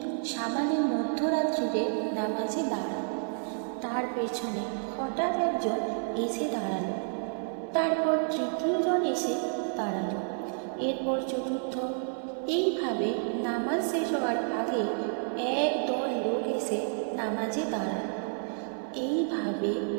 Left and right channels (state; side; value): silent; left; 58 dB below the other